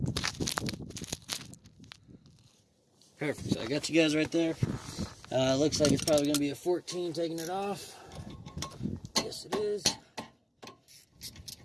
perfect. So I got you guys right there. Looks like it's probably going to be a 14 taking it off. Yes, it is.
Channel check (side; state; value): both; identical; correlation 1.00